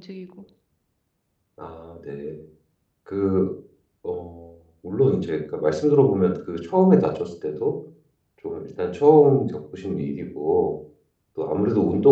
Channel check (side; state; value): both; identical; correlation 1.00